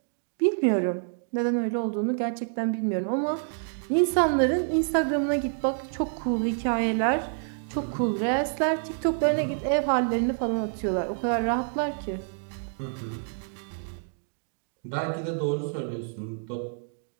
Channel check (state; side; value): silent; left; digital silence